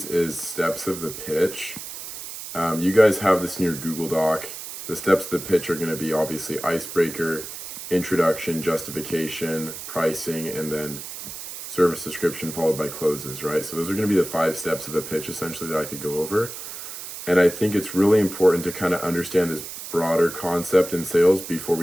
is steps of the pitch. You guys have this in your Google Doc. The steps of the pitch are going to be obviously icebreaker, introduction, justification, pricing, and then service description followed by closes, right? So those are going to be the 5 steps of the pitch essentially that I could go over. And I think it's really important to kind of understand this broader concept in sales before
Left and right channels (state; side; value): noise; right; hiss, 10 dB below the sound